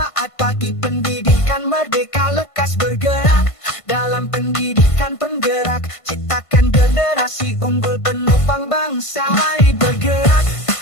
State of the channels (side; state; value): right; late; 1.5 ms